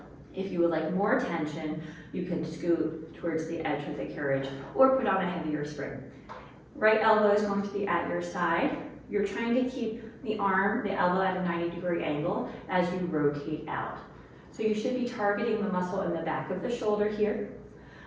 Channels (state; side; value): identical; both; correlation 1.00